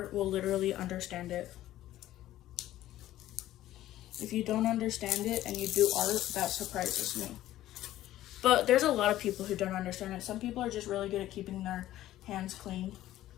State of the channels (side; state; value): right; quieter; 14.1 dB